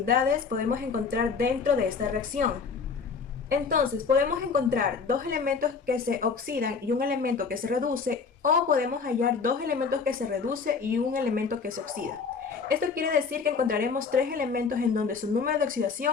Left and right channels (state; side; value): quieter; right; 5.3 dB